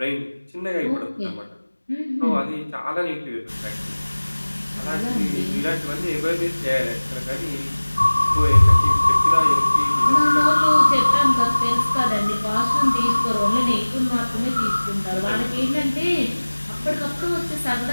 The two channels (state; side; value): inverted; both; correlation -1.00